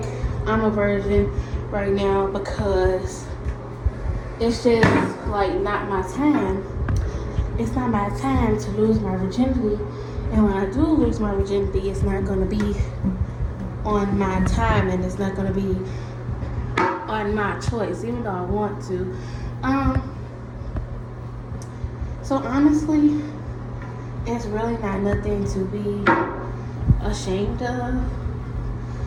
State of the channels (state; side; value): identical; both; correlation 1.00